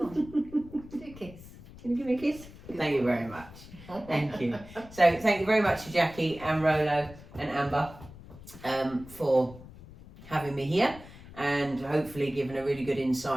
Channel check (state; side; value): noise; left; rumble, 18 dB below the sound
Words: on. Do a kiss. Can you give me a kiss? Thank you very much. Thank you. So thank you very much to Jackie and Rolo and Amber for having me here, and hopefully giving a really good